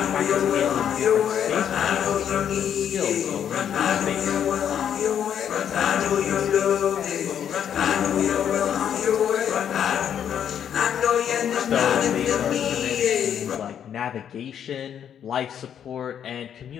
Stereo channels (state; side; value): quieter; right; 9.0 dB